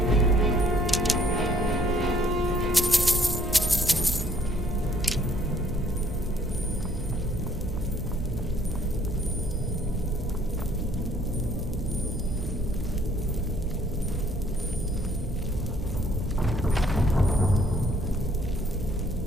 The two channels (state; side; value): normal; both; correlation 0.62